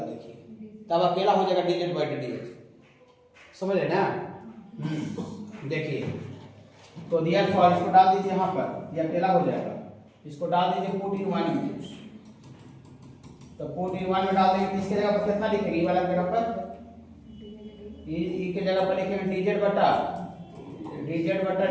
देखिए, तब अकेला हो जाएगा डीजेड बाई डीएक्स, समझ रहे ना। देखिए तो दियर फॉर इसको डाल दीजिए यहाँ पर, ये अकेला हो जाएगा, इसको डाल दीजिए पुट इन वन में, तो पुट इन वन में डाल देंगे, इसके जगह पर कितना लिखेंगे, ई वाला जगह पर, ई के जगह पर लिखेंगे डीजेड बटा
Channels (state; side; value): identical; both; correlation 1.00